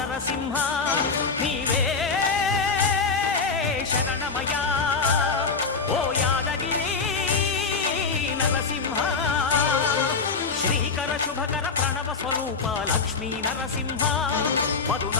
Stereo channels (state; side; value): quieter; right; 4.8 dB